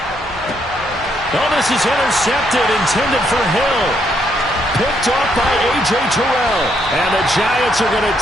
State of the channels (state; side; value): normal; both; correlation 0.74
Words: Oh, this is intercepted, intended for Hill. Picked off by A.J. Terrell. And the Giants are going to